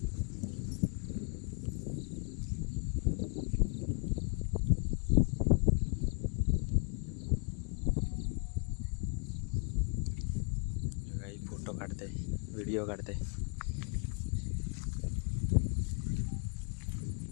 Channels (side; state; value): right; quieter; 38.6 dB